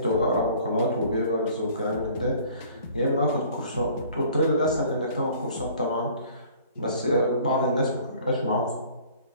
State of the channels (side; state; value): both; inverted; correlation -0.52